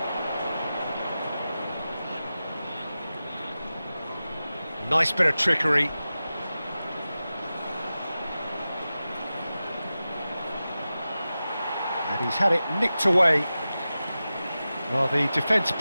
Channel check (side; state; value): both; inverted; correlation -0.94